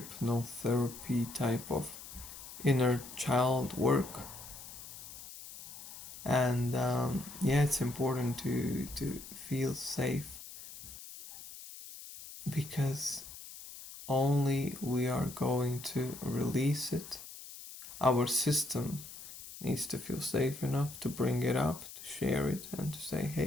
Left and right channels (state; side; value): noise; left; hiss, 14 dB below the sound